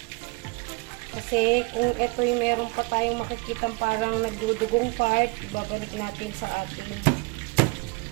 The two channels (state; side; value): quieter; left; 28.2 dB